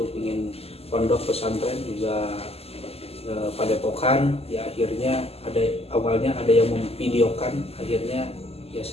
ingin pondok pesantren juga padepokan. Ya akhirnya awalnya ada yang memvideokan, akhirnya ya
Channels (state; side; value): late; right; 0.29 ms